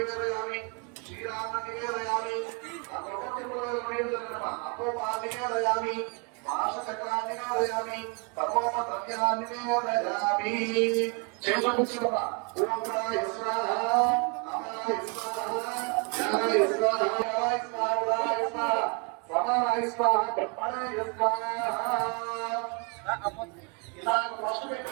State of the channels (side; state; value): left; quieter; 34.8 dB